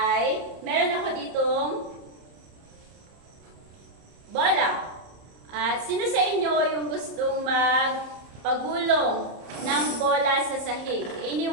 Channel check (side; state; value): left; late; 30 ms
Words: meron ako ditong bola. At sino sa inyo yung gustong magpagulong ng bola sa sahig?